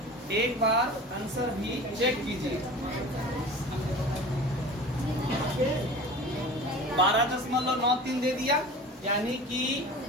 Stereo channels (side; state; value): both; normal; correlation 0.37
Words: एक बार आंसर भी चेक कीजिए। 12.93 दे दिया, यानी कि